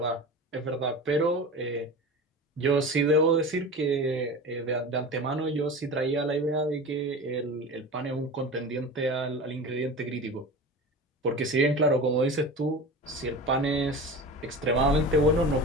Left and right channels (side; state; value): both; normal; correlation 0.32